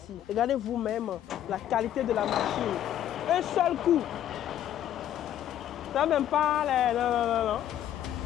Regardez vous-même la qualité de la machine. Un seul coup. Ça même pas les... Non.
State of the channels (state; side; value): quieter; right; 11.3 dB